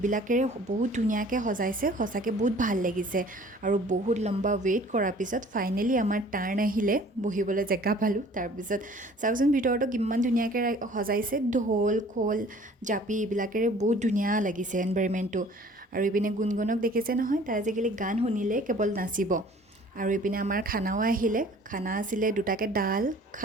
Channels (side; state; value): both; normal; correlation 0.51